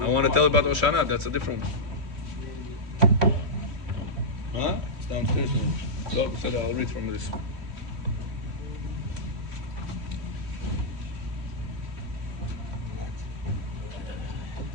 I want to tell about Oshana. That's a different one. Huh? It's downstairs. So I'll read from this.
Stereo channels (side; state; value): left; late; 3.1 ms